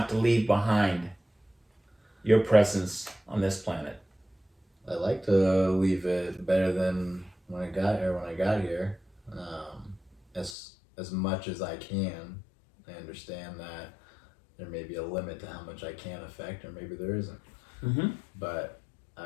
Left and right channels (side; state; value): right; drops out; at 10.6 s